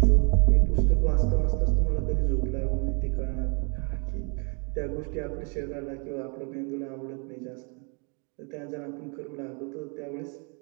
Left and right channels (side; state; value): left; quieter; 36.0 dB